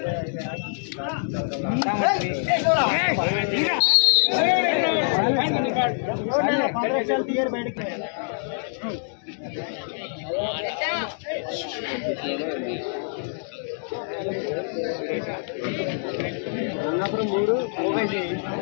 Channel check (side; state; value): right; silent; digital silence